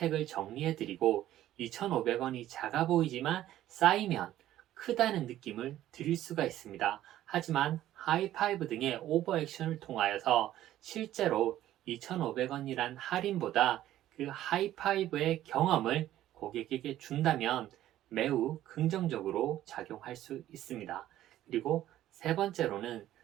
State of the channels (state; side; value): quieter; left; 13.3 dB